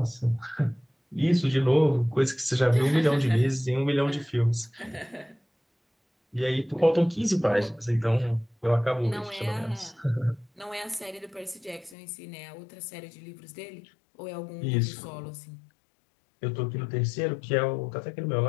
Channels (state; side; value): drops out; right; at 12.0 s